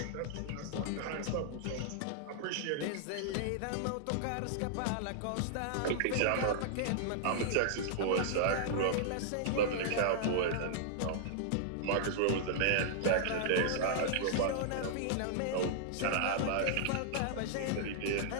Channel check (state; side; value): different; both; correlation -0.01